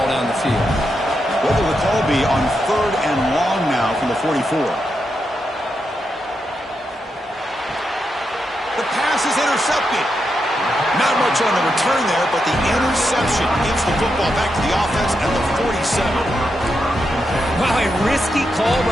down the field. What will the call be on third and long now from the 44? The pass is intercepted. Not much on the return there, but the interception gives the football back to the offense at the 47. Wow, a risky call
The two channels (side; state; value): both; normal; correlation 0.85